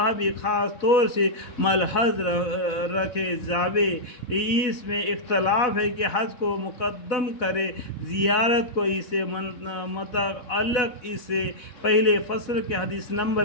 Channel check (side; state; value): right; late; 4.0 ms